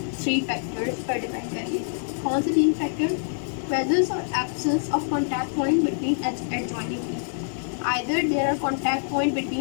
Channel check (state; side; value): silent; right; digital silence